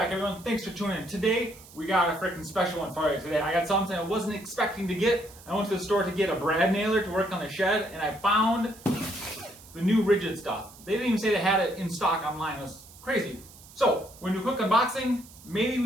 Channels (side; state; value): right; noise; hiss, 21 dB below the sound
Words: everyone. Thanks for tuning in. Today, we got a freaking special one for you. Today, I got something I wasn't expecting to get. I went to the store to get a brad nailer to work on the shed, and I found the new Ridgid stuff. They didn't even say they had it in stock online. It was crazy. So, when we do a quick unboxing, maybe we